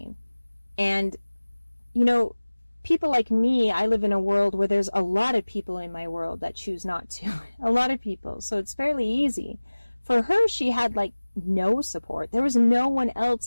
And, you know, people like me, I live in a world where there's a lot of people in my world that choose not to. A lot of people. So it's fairly easy. For her, she had like no support. There was no one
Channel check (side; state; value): both; inverted; correlation -1.00